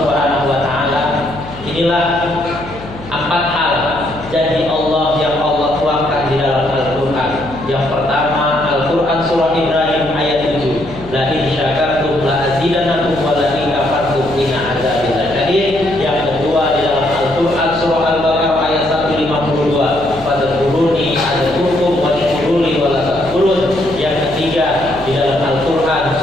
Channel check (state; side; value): noise; left; hum, 15 dB below the sound